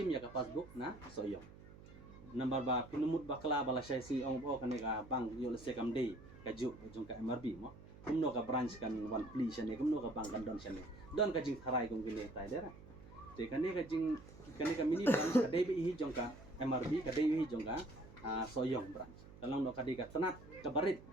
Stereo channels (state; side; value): noise; right; hum, 18 dB below the sound